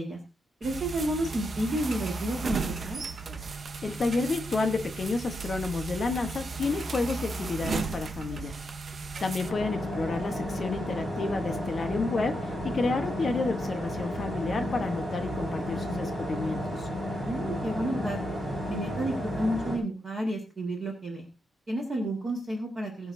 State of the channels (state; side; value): normal; both; correlation 0.83